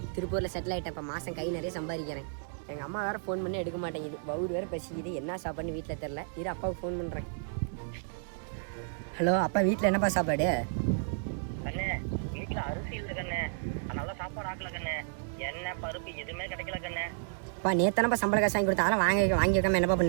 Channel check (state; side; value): silent; left; digital silence